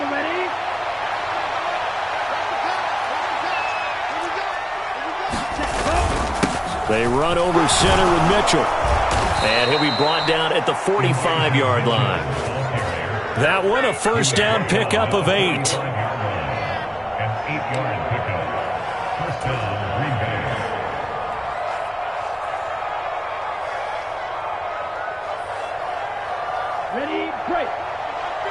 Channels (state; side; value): identical; both; correlation 1.00